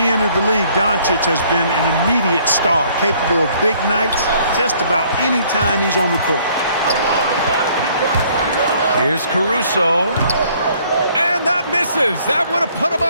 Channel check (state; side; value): inverted; both; correlation -0.61